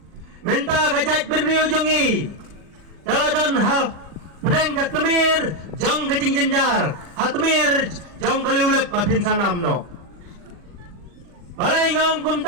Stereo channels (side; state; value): left; late; 40 ms